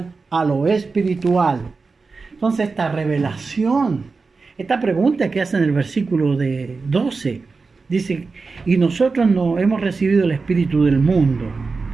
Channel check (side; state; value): left; quieter; 4.3 dB